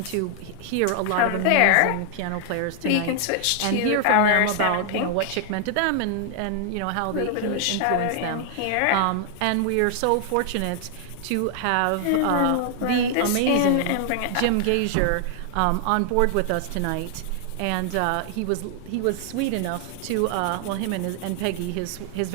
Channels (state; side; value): different; both; correlation 0.00